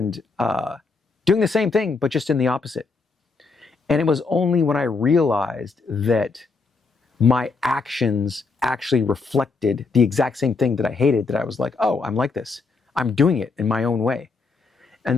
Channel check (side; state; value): right; quieter; 4.3 dB